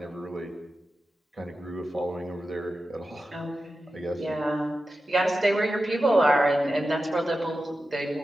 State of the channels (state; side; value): normal; both; correlation 0.92